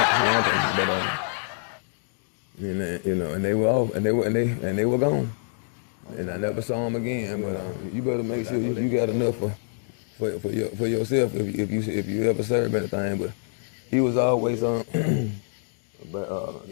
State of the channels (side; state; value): right; silent; digital silence